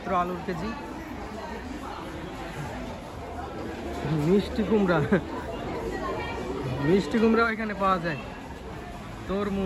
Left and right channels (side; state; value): both; identical; correlation 1.00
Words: আলুর কেজি। মিষ্টি কুমড়াও এখানে পাওয়া যায়।